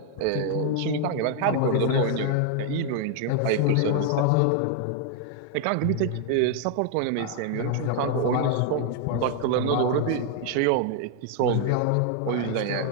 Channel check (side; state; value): both; different; correlation 0.00